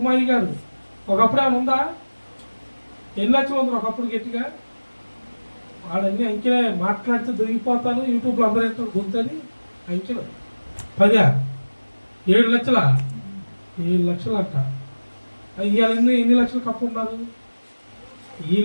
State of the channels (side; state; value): both; inverted; correlation -1.00